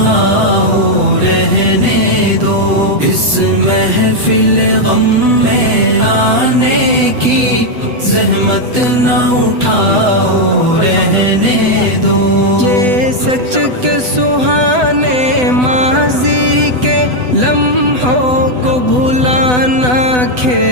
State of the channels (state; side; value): late; left; 8.0 ms